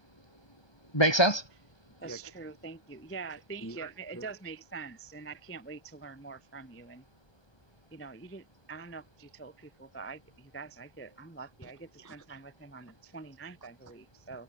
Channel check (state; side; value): late; right; 1.3 ms